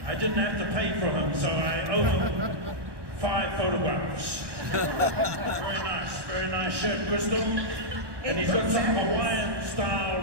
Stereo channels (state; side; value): late; left; 1.2 ms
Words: I didn't have to pay for them, so I owe them 5 photographs. Very nice shirt, Crystal. And he's got some Hawaiian style